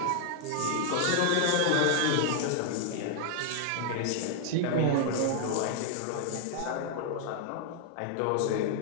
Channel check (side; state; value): both; different; correlation -0.01